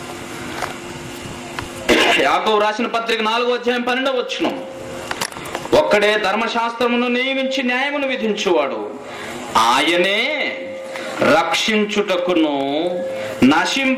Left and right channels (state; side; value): identical; both; correlation 1.00